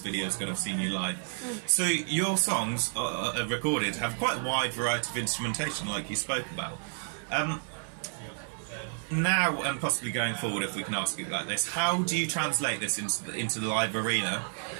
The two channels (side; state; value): left; silent; 57 dB below the other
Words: video is going to have seen you live. So your songs recorded have quite a wide variety of instrumentation, like you spoke about. Now and possibly going forward, if we can ask you like this, how do you translate this into the live arena?